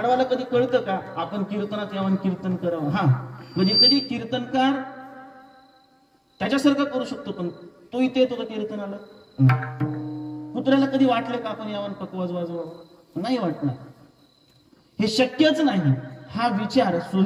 कधी कळतं का आपण कीर्तनात यावं कीर्तन करावं? हा, म्हणजे कधी कीर्तनकार त्याच्यासारखं करू शकतो, पण तो इथे येतो का कीर्तनाला? कुत्र्याला कधी वाटलं का आपण यावं पकवाज वाजवावं? नाही वाटणार. हे शक्यच नाही. हा विचार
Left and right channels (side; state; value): both; identical; correlation 1.00